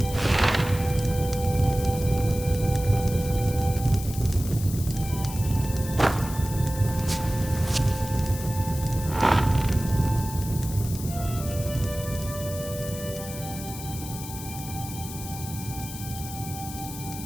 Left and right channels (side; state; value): left; noise; hiss, 11 dB below the sound